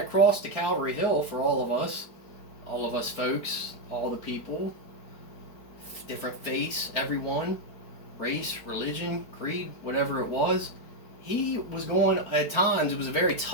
cross to Calvary Hill for all of us folks, all the people, different faiths, everyone, race, religion, creed, whatever it was, he was going, at times, it was a very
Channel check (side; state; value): right; late; 4.8 ms